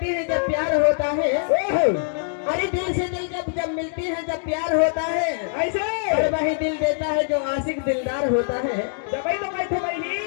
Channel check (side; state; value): right; silent; digital silence